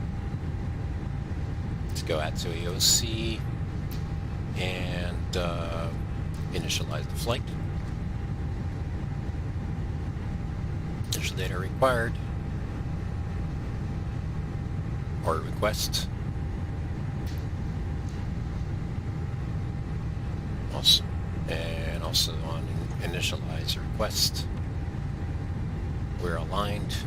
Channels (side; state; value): both; identical; correlation 1.00